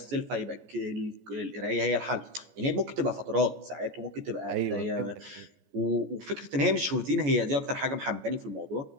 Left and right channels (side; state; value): left; late; 14 ms